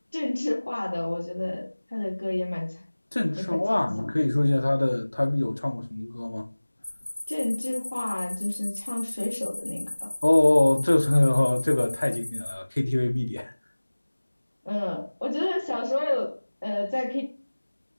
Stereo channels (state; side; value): inverted; both; correlation -1.00